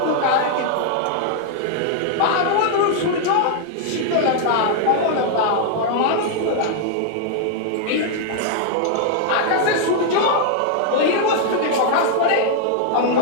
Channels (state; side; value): different; both; correlation 0.00